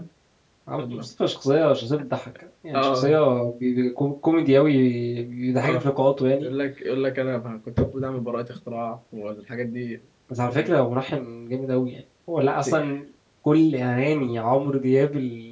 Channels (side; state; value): both; identical; correlation 1.00